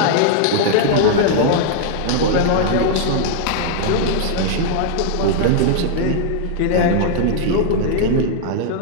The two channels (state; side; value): different; both; correlation -0.01